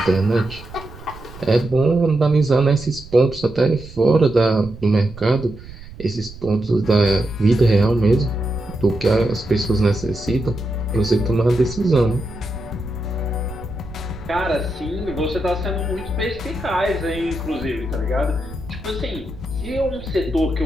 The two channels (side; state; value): right; noise; rumble, 16 dB below the sound